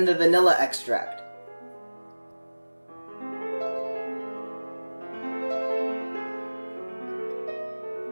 the vanilla extract.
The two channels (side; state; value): both; inverted; correlation -1.00